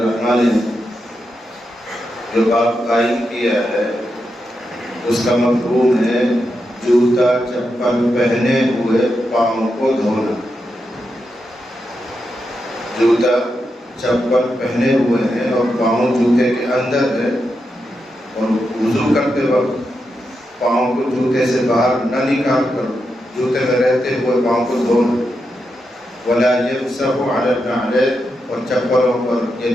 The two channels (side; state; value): both; normal; correlation 0.86